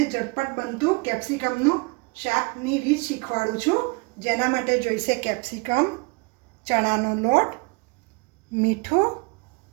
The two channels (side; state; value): left; quieter; 29.0 dB